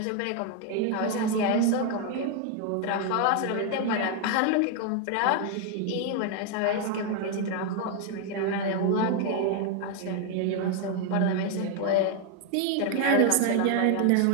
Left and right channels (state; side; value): different; both; correlation 0.01